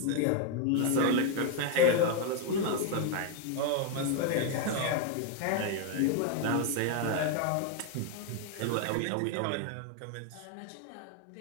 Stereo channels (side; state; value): both; different; correlation 0.01